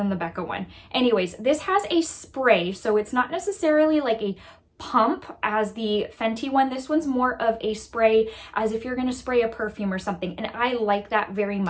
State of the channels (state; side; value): identical; both; correlation 1.00